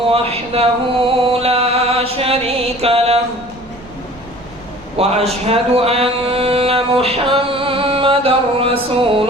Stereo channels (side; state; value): right; noise; rumble, 24 dB below the sound